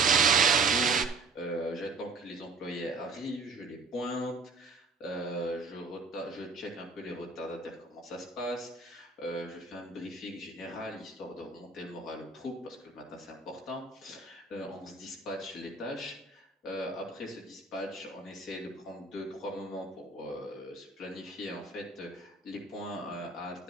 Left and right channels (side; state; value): left; quieter; 3.7 dB